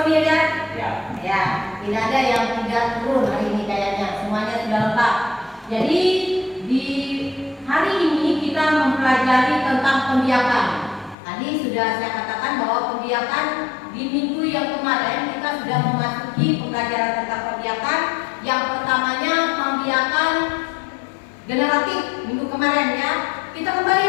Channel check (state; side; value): drops out; right; at 11.2 s